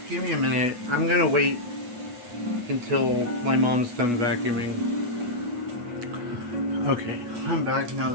Give me a minute. I'm gonna wait until my mom's done vacuuming. Okay, I'm back now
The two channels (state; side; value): late; left; 8.3 ms